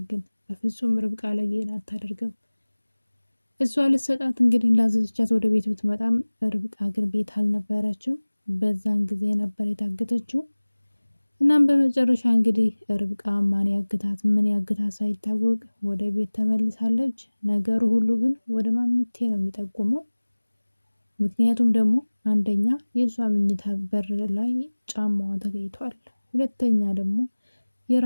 ግን በፍጹም ርብቃ ላይ ይሄን አታደርግም። እሷ ልትሰጣት እንግዲህ እንዳዘዘቻት ወደ ቤት ብትመጣም ርብቃ ግን ቤት አልነበረችም። በዛን ጊዜ ነበር የታገተችው። እናም በመጨረሻ እንግዲህ ርብቃ ማን ያግታት ምን ያግታት ሳይታወቅ ወደ ቤት ተመልሳለች። ነገሩ ሁሉ ግን ወደ ማሚቴ ነው የሚጠቁመው። ምክንያቱም ደግሞ አንደኛ የእሷ መኝታ በር ላይ ጫማዋ ተገኝቷል። ሁለተኛ ደግሞ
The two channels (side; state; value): both; inverted; correlation -1.00